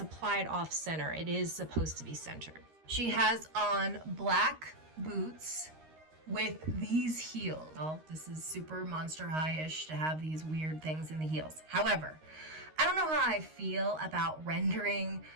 applied off center. It is supposed to be centered. She has on black boots with these heels. Well, this is super Monster High-ish to have these weird things in the heels. However, I don't know how I feel about rendering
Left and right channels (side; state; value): left; late; 13 ms